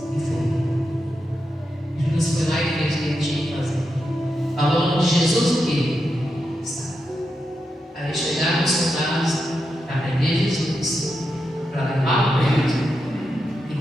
e foi. Judas foi lá e fez o que ele tinha que fazer. Falou de Jesus o quê? Aí chegaram os soldados para prender Jesus, para levar o preso. E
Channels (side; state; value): both; normal; correlation 0.86